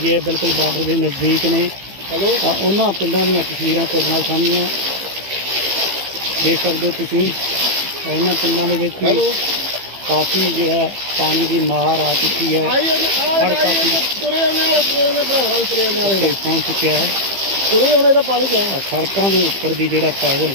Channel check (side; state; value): left; late; 15 ms